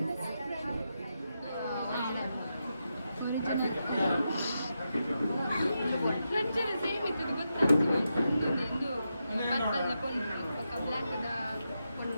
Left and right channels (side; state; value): both; inverted; correlation -0.87